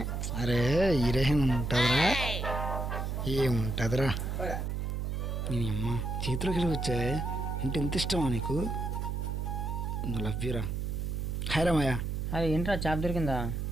అరే హీరోయిన్ ఉంటుందిరా, ఏముంటుందిరా. నేను అమ్మ చేతిలోకి వచ్చాయి అంటే ఎంత ఇష్టమా నీకు? లవ్ యూరా. హాయ్ మాయా. అరే ఏంట్రా చేప దొరికిందా?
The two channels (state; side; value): noise; right; hum, 2 dB below the sound